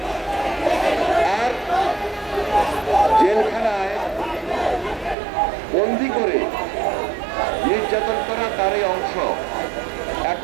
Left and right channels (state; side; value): drops out; left; at 5.2 s